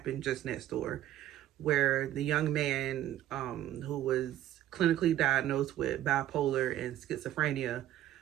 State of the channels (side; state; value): left; quieter; 12.8 dB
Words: just next door where the young man who was clinically diagnosed with bipolar and schizophrenia